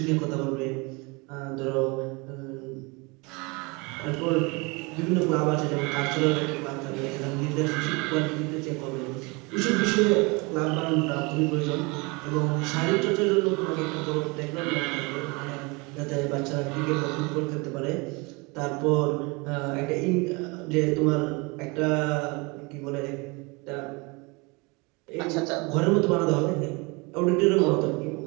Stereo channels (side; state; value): left; quieter; 27.7 dB